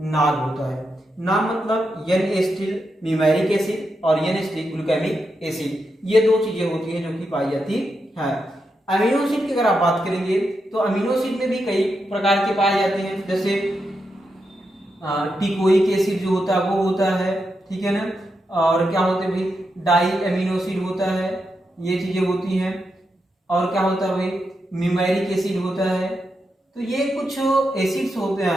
होता है। नाम मतलब एन एसिटिल न्यूमेरिक एसिड और एन एसिटिल ग्लूटामिक एसिड, ये दो चीजें होती हैं जो कि पाई जाती है। अमीनो एसिड की अगर आप बात करेंगे तो अमीनो एसिड में भी कई प्रकार के पाए जाते हैं, जैसे टिकोइक एसिड जो होता है वो होता है, ठीक है ना। और क्या होते हैं भाई? डाई अमीनो एसिड होता है, ये चीजें होती हैं। और क्या होता है भाई? न्यूमेरिक एसिड होता है। तो ये कुछ एसिड्स होते हैं,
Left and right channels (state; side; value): normal; both; correlation 0.85